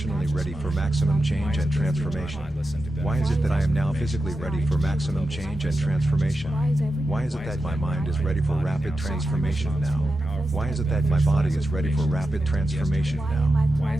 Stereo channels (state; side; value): normal; both; correlation 0.90